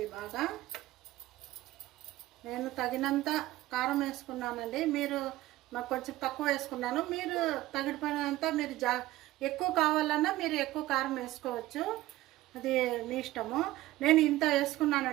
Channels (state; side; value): quieter; left; 16.6 dB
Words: బాగా. నేను తగినంత కారం వేసుకున్నానండి. మీరు నాకు కొంచెం తక్కువ వేసుకున్నాను. మీరు తగిననంత మీరు ఎక్కువ కావాలన్నా మీరు ఎక్కువ కారం వేసుకోవచ్చు, అది మీ ఇష్టము. నేను ఇంత